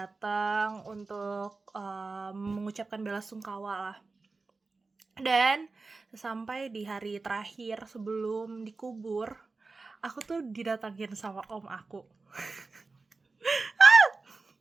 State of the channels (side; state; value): left; quieter; 3.9 dB